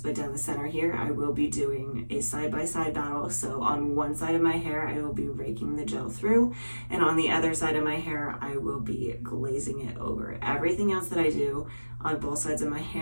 down the center here. I will be doing a side-by-side battle. So on one side of my hair, I will be raking the gel through, and on the other side of my hair, I will be glazing it over. Everything else that I do on both sides of my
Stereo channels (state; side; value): inverted; both; correlation -1.00